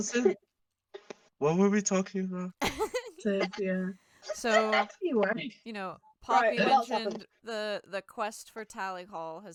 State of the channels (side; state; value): both; identical; correlation 1.00